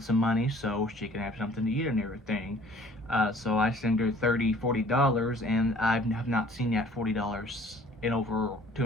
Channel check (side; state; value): both; normal; correlation 0.53